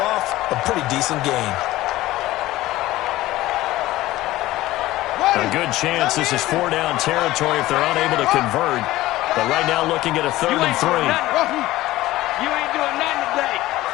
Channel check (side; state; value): right; quieter; 16.8 dB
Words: a pretty decent gain. A good chance this is 4-down territory if they're unable to convert. But right now looking at a 3rd and 3. You ain't doing nothing today.